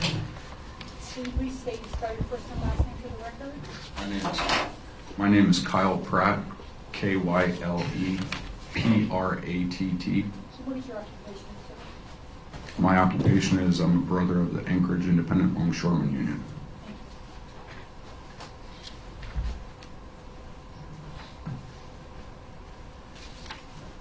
Can you please state and spell your first and last name for the record? My name is Kyle Pratt, Kyle Pratt. So what is your occupation, sir? My occupation is I'm a brother of the Anchorage Independent Longshoremen Union.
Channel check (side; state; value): both; identical; correlation 1.00